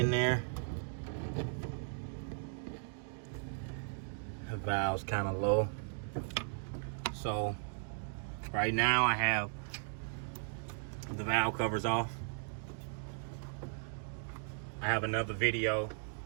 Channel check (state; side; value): silent; left; digital silence